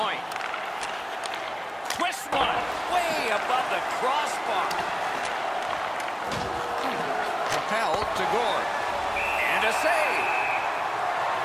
Twist one. Way above the crossbar. Propelled to Gord. And a save.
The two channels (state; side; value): identical; both; correlation 1.00